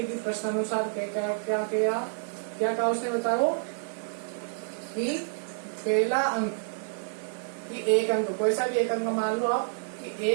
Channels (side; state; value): left; silent; digital silence